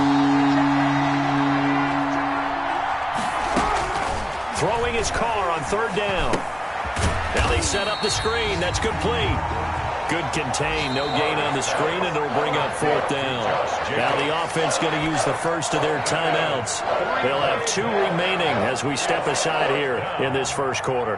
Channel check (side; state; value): both; identical; correlation 1.00